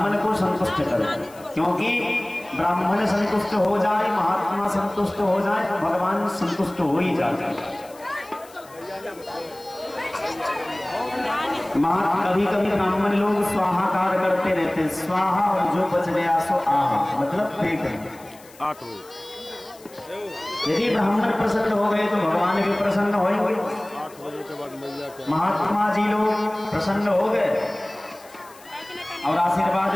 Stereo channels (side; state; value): left; noise; hiss, 24 dB below the sound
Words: को संतुष्ट करो, क्योंकि ब्राह्मण संतुष्ट हो जाए, महात्मा संतुष्ट हो जाए तो भगवान संतुष्ट हो ही जाते हैं। कभी कभी ब्राह्मण लोग स्वाहाकार करते रहते हैं, स्वाहा और जो बच गया सो आहा, मतलब पेट। यदि ब्राह्मण प्रसन्न हो गए तो भगवान भी प्रसन्न होंगे। महात्मा जी लोग प्रसन्न हो गए और आशीर्वाद